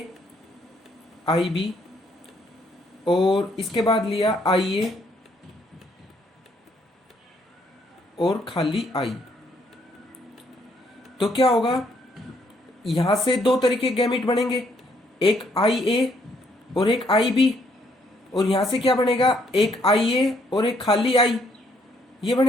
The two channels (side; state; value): both; normal; correlation 0.70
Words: IB और इसके बाद लिया IA और खाली I. तो क्या होगा? यहां से दो तरीके गैमेट बनेंगे, एक IA और एक IB, और यहां से क्या बनेगा? एक IA और एक खाली I. ये